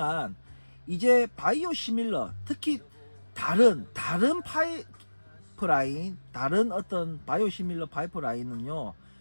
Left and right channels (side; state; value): both; inverted; correlation -1.00